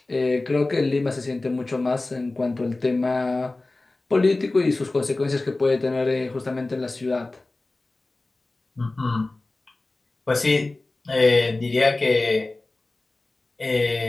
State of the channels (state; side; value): quieter; right; 3.1 dB